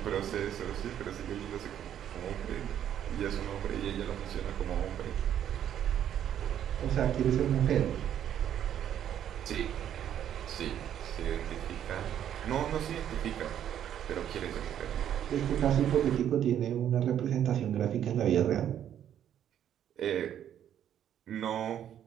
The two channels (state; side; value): quieter; left; 10.2 dB